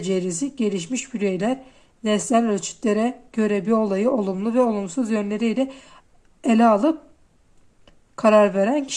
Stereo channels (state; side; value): identical; both; correlation 1.00